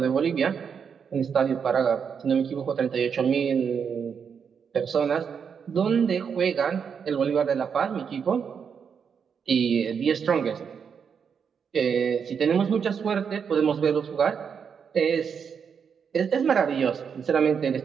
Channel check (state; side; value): quieter; left; 6.8 dB